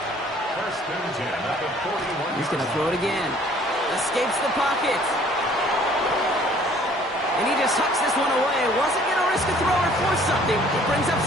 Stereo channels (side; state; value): both; normal; correlation 0.56